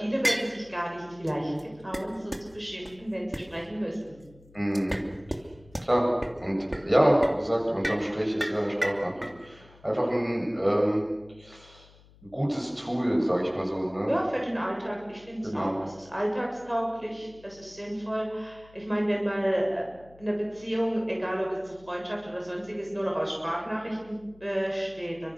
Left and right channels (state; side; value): noise; left; hum, 25 dB below the sound